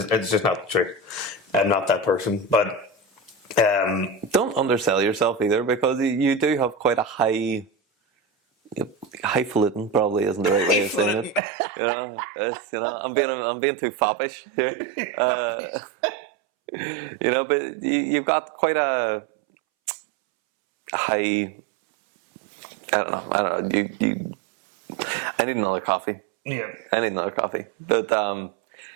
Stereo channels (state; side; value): drops out; left; at 11.4 s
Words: it's just not the truth. I'm not that person, but don't undersell yourself either, because you do have quite a highfalutin, probably isn't the right way of saying it. I'm being too foppish here. But you've got quite a high. I don't know. I need another coffee. Yeah, I need another coffee. But